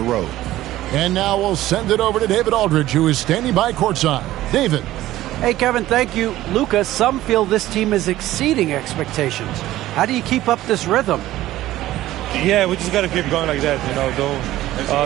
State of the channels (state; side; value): quieter; left; 15.2 dB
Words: road. And now we'll send it over to David Aldridge, who is standing by courtside. David. Hey, Kevin, thank you. Luka, some feel this team is exceeding expectations. How do you keep up this rhythm? Yeah, we just got to keep going like that. You